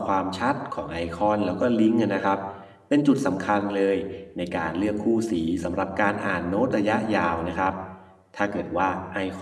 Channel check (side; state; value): both; identical; correlation 1.00